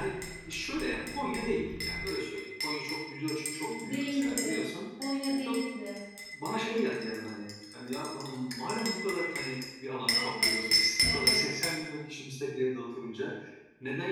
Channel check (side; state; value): both; identical; correlation 1.00